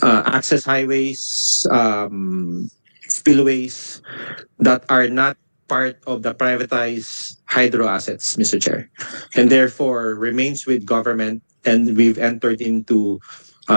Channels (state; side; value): inverted; both; correlation -1.00